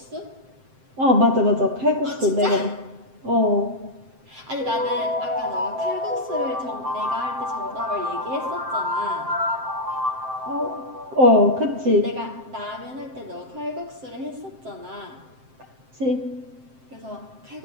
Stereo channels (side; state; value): left; late; 7.7 ms